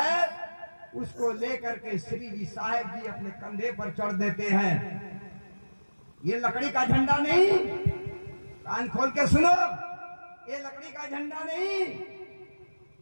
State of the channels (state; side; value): inverted; both; correlation -1.00